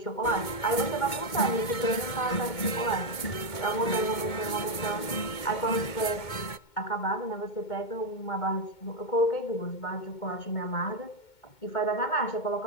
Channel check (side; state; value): right; late; 2.2 ms